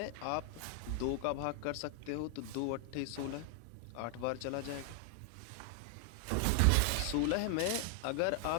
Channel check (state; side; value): different; both; correlation 0.00